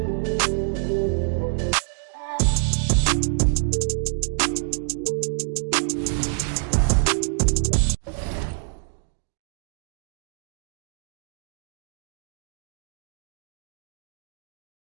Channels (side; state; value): left; silent; digital silence